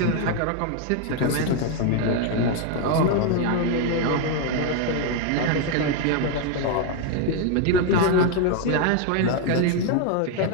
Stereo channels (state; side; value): different; both; correlation 0.01